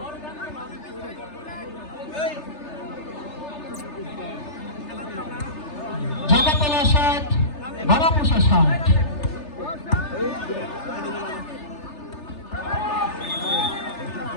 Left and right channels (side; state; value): right; late; 3.3 ms